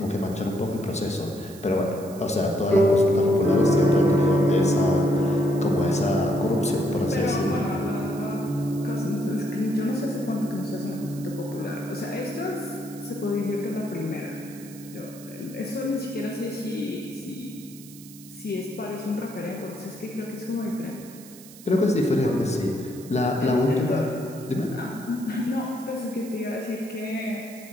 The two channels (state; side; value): noise; right; hiss, 19 dB below the sound